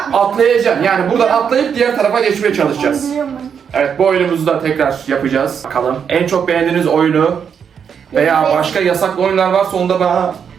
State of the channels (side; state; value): left; quieter; 7.3 dB